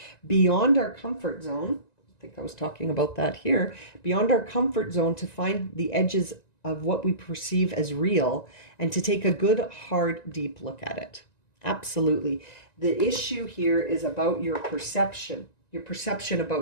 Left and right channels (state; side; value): late; right; 1.9 ms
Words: beyond our comfort zone. I think I was talking about that here. Beyond our comfort zone to find the edges of what we perceive as real and to take a good, hard, deep look at it. Absolutely. The issue here is about your perception. Your perception